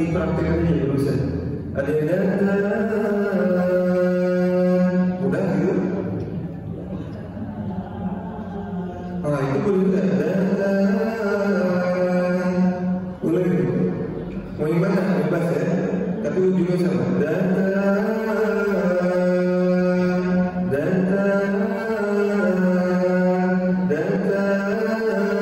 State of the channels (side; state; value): both; identical; correlation 1.00